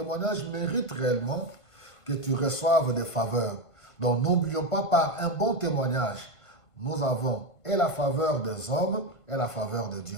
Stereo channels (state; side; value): late; right; 1.5 ms